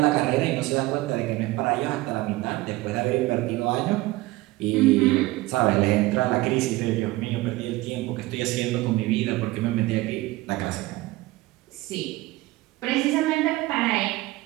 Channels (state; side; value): quieter; left; 19.4 dB